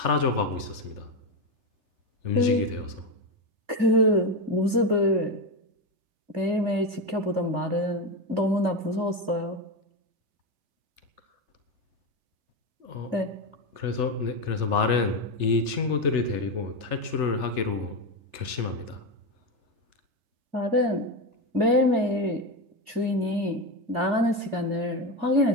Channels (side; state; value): left; late; 3.3 ms